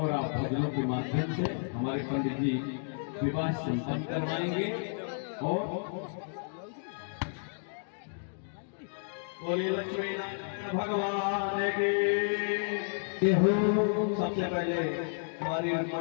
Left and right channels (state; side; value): silent; right; digital silence